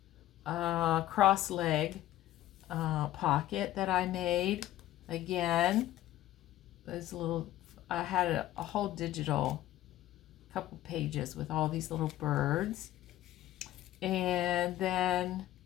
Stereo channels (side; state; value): right; quieter; 14.2 dB